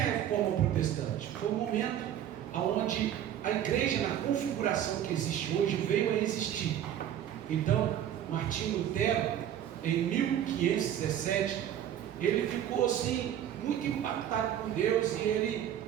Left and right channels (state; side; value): quieter; left; 10.5 dB